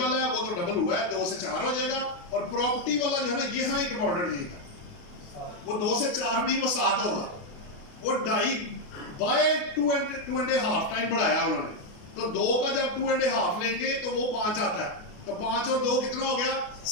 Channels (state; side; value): late; right; 28 ms